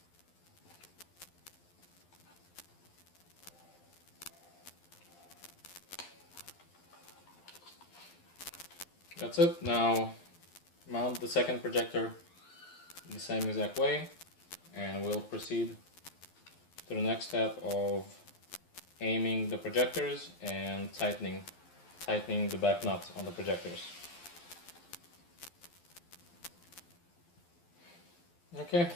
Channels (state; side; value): late; right; 12 ms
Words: That's it. Now mount the second projector the same exact way, and we'll proceed to the next step of aiming the projectors and tightening the back nut on the projectors. Okay,